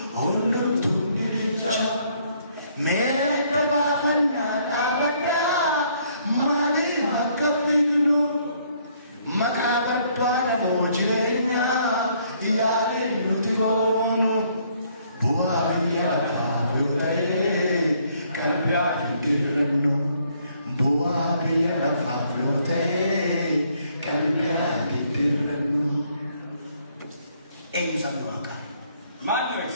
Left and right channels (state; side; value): inverted; both; correlation -0.67